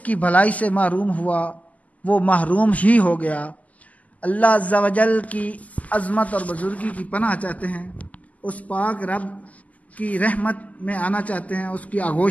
भलाई से महरूम हुआ वो महरूम ही हो गया। अल्लाह अज़्ज़ा वजल की अज़मत और बुज़ुर्गी की पनाह चाहते हैं, उस पाक रब की रहमत में आना चाहते हैं, उसकी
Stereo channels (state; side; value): late; right; 0.075 ms